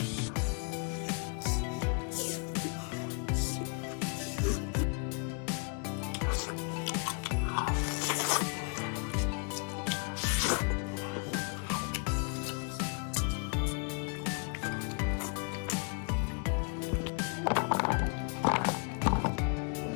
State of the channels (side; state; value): right; quieter; 35.8 dB